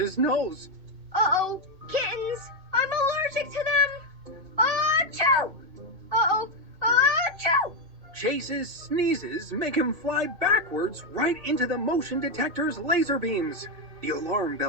nose. Uh-oh, kittens! I'm allergic to them! Achoo! Uh-oh, achoo! Chase's sneezes make him fly backwards right into the motion detector's laser beams. The alarm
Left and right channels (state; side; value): late; left; 2.6 ms